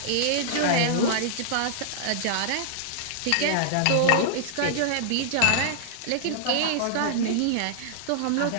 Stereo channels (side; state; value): both; different; correlation -0.01